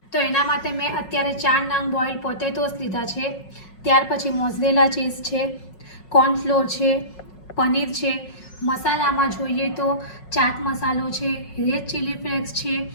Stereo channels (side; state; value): right; late; 5.5 ms